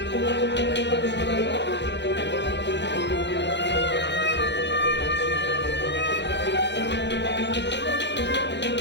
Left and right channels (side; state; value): right; late; 0.51 ms